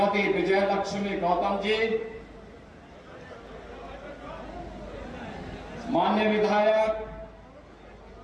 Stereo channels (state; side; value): identical; both; correlation 1.00